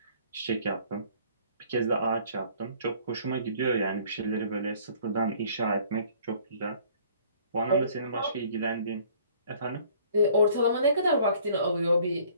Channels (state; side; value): inverted; both; correlation -0.56